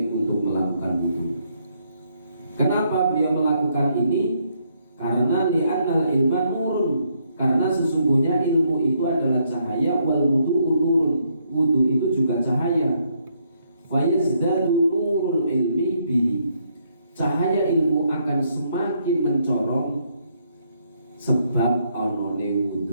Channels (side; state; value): both; inverted; correlation -0.73